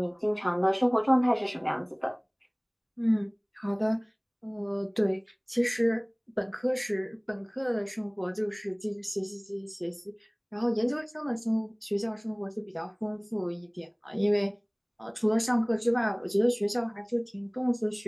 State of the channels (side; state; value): both; identical; correlation 1.00